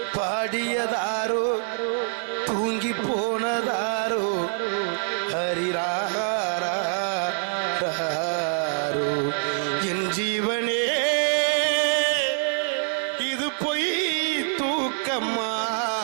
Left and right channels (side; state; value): left; silent; 61 dB below the other